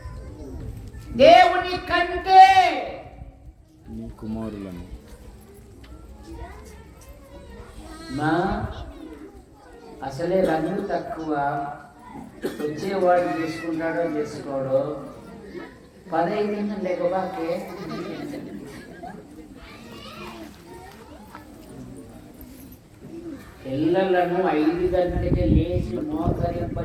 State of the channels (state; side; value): identical; both; correlation 1.00